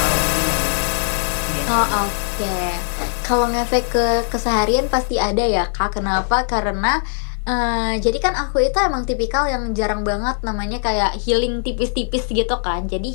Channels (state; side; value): silent; right; digital silence